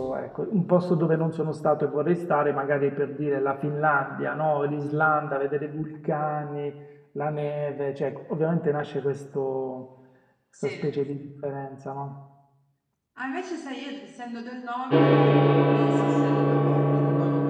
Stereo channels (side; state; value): both; identical; correlation 1.00